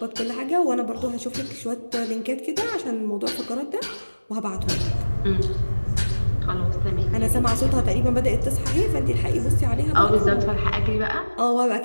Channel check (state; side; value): inverted; both; correlation -1.00